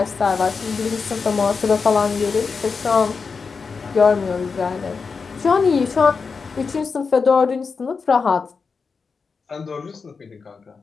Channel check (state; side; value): quieter; right; 5.0 dB